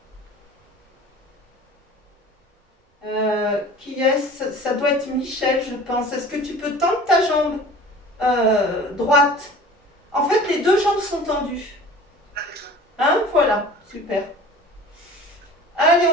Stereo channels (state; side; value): normal; both; correlation 0.42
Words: Qui est-ce? Ça doit être Michel, je pense. Est-ce que tu peux tendre ta jambe droite? En fait, les deux jambes sont tendues. Hein? Voilà, super. Allez,